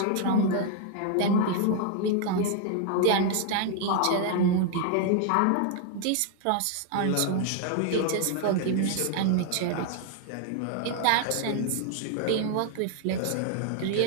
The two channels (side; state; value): both; different; correlation 0.00